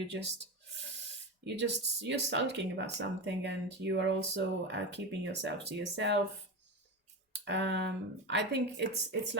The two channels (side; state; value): both; normal; correlation 0.20